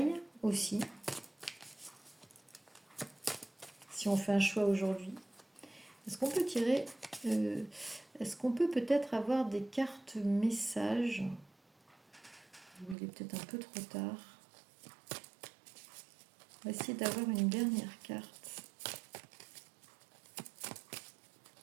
aussi, si on fait un choix aujourd'hui. Est-ce qu'on peut tirer est-ce qu'on peut peut-être avoir des cartes messages? Il est peut-être un peu trop tard. On va essayer d'avoir une dernière carte.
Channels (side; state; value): left; drops out; at 13.0 s